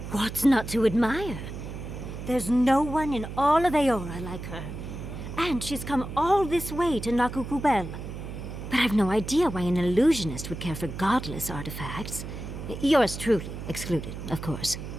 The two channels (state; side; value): noise; right; hum, 9 dB below the sound